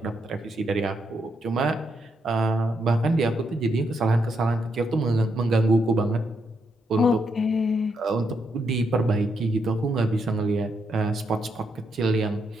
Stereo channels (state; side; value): normal; both; correlation 0.79